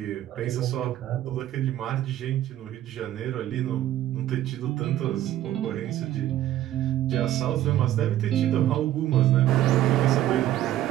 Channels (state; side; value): quieter; left; 13.1 dB